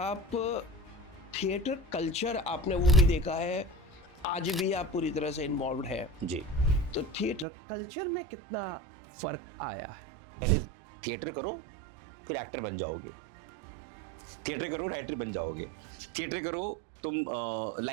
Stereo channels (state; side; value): drops out; left; at 7.5 s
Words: थिएटर कल्चर आपने वो भी देखा है, आज भी आप पूरी तरह से इन्वॉल्व है, जी। तो थिएटर कल्चर में कितना फर्क आया है? पहले थिएटर करो, फिर एक्टर बन जाओगे। थिएटर करो, राइटर बन जाओगे। थिएटर करो, तुम